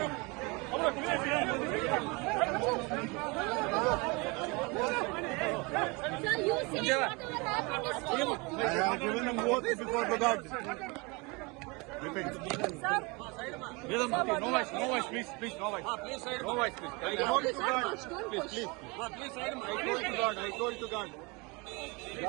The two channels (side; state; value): left; quieter; 27.7 dB